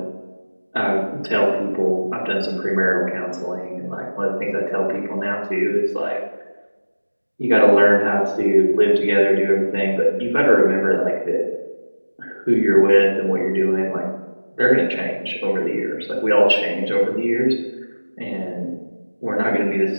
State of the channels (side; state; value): both; inverted; correlation -1.00